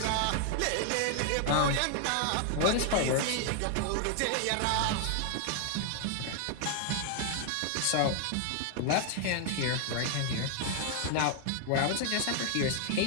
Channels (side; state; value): both; different; correlation 0.00